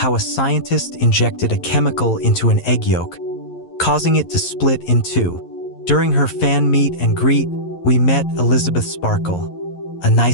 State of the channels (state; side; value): late; right; 11 ms